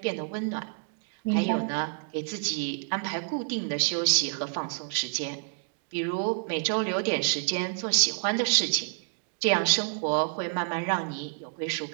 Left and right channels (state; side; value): silent; left; 59 dB below the other